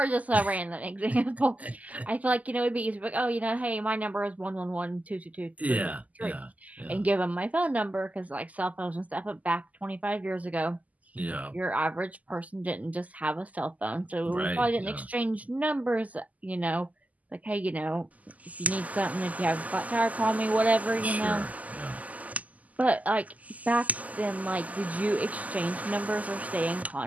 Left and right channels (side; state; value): left; late; 0.076 ms